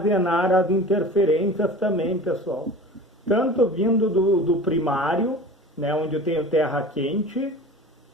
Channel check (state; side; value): normal; both; correlation 0.38